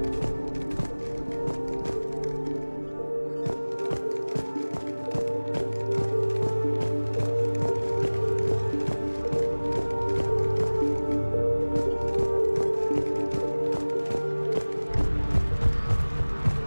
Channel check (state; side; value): inverted; both; correlation -1.00